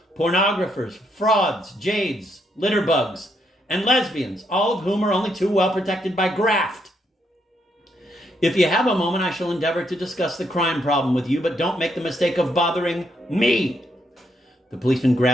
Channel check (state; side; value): normal; both; correlation 0.76